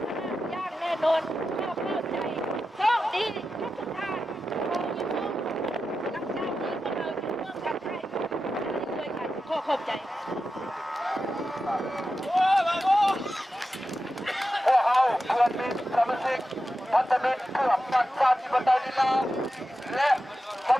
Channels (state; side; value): normal; both; correlation 0.91